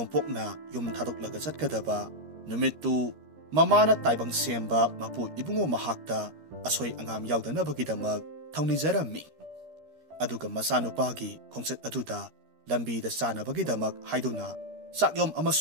yum thadoklaga chatkadaba numittu mamana taibang semba mapu ibungo mahakta asoi angam yaudanabagidamak thaunijarammi. Aduga masanupagi khongset aduda lambida sanabagidamak haiduna sakyom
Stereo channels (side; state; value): left; late; 13 ms